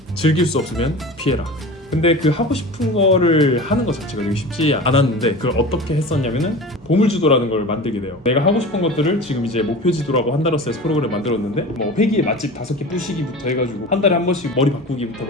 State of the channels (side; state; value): both; normal; correlation 0.34